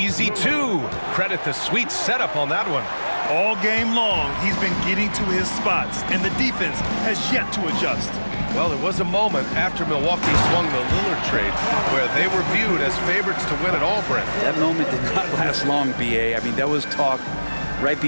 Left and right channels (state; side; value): inverted; both; correlation -1.00